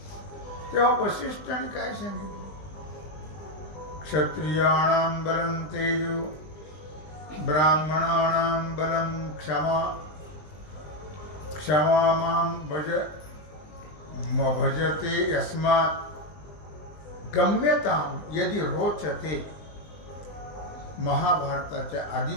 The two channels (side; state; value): right; late; 20 ms